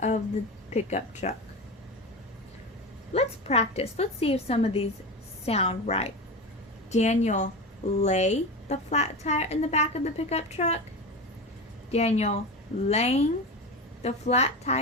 the pickup truck. Let's practice. Let's see if some of these sound right. Daniel lay the flat tire in the back of the pickup truck. Daniel laying the flat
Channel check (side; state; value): both; normal; correlation 0.24